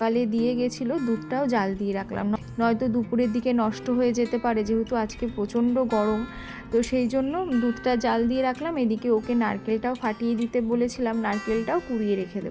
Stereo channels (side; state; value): both; identical; correlation 1.00